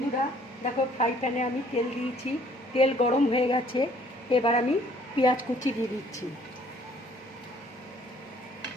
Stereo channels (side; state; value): both; normal; correlation 0.59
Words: দেখো, ফ্রাই প্যানে আমি তেল দিয়েছি, তেল গরম হয়ে গেছে। এবার আমি পেঁয়াজ কুচি দিয়ে দিচ্ছি।